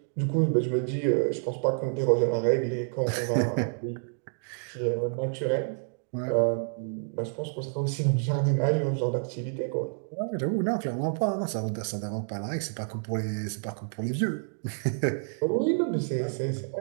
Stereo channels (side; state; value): left; silent; digital silence